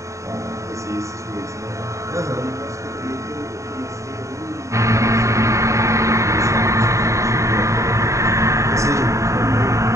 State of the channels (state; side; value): late; left; 0.15 ms